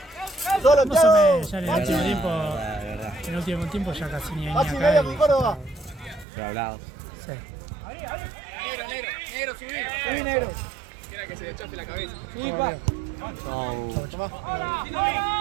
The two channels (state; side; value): drops out; left; at 6.2 s